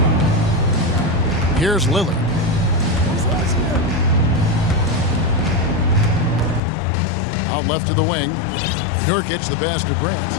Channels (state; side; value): drops out; right; at 6.6 s